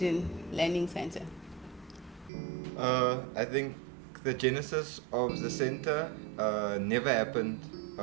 Learning Center? I think the genesis of the center never happened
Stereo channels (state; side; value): drops out; left; at 2.3 s